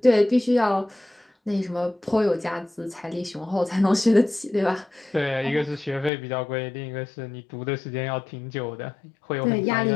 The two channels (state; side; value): drops out; right; at 6.1 s